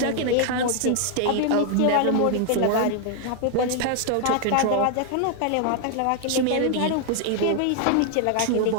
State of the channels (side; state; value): both; different; correlation 0.00